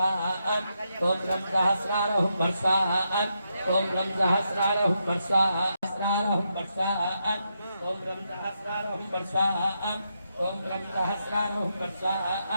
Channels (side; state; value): both; inverted; correlation -0.82